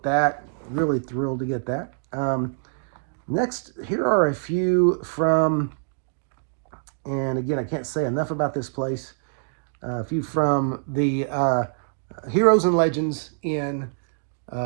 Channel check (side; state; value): left; silent; digital silence